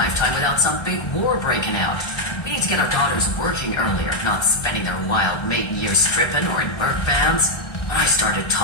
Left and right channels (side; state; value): right; late; 1.4 ms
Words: without some big war breaking out. We need to get our daughters working earlier, not spending their wild maiden years stripping or in work bands. When I started